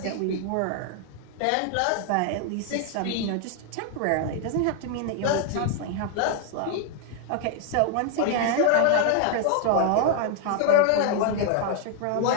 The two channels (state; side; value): different; both; correlation 0.00